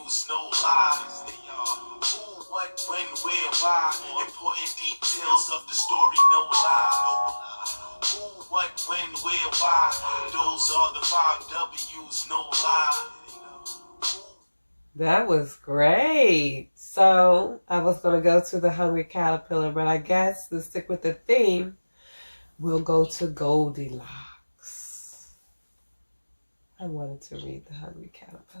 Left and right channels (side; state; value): both; inverted; correlation -1.00